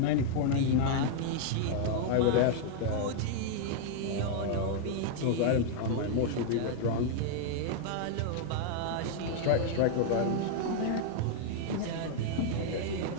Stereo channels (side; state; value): both; different; correlation 0.00